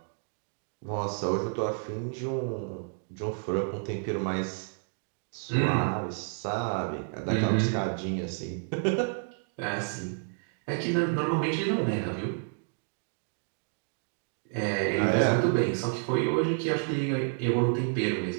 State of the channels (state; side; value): silent; left; 57 dB below the other